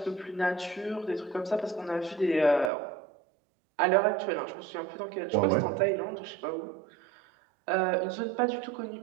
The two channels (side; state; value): left; drops out; at 2.7 s